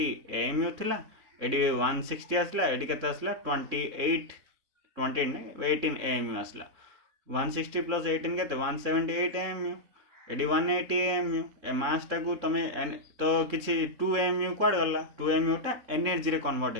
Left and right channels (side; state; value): left; late; 3.7 ms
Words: AMU थिला एडी 160 आसला एडी केते आसला 18 AMU आसला 160 प्लस 18 केते 178 AMU एडी 180 AMU ए मास टा को तमे तो किछि 2 AMU क्वाड गला 2 AMU टा एनर्जी रे कन्वर्ट